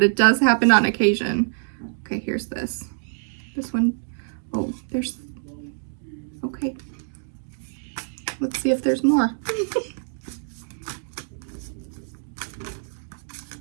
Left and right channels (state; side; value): silent; left; digital silence